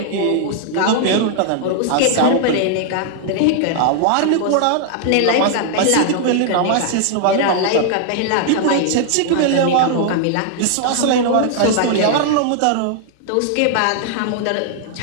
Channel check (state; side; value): different; both; correlation 0.00